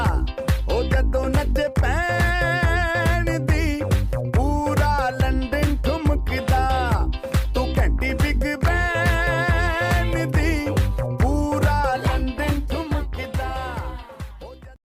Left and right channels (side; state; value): both; identical; correlation 1.00